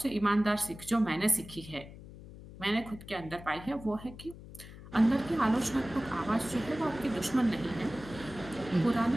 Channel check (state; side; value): noise; left; hum, 16 dB below the sound